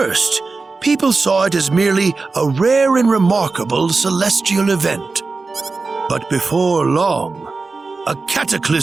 people saw it as merely a rare and remarkable celestial event. But before long, a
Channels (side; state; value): left; quieter; 4.0 dB